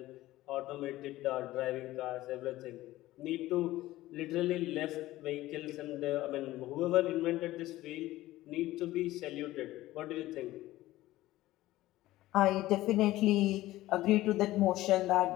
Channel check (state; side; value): quieter; right; 16.5 dB